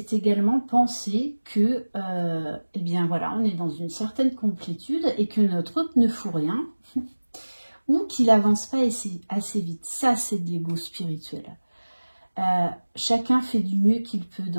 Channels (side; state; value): both; inverted; correlation -1.00